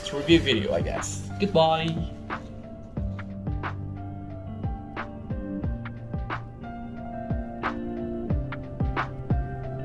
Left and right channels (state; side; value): identical; both; correlation 1.00